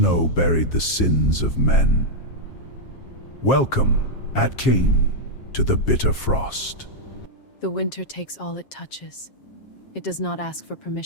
buried the sins of men. Welcome, at Cain, to the bitter frost. The winter takes all it touches. It does not ask for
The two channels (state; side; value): late; right; 7.4 ms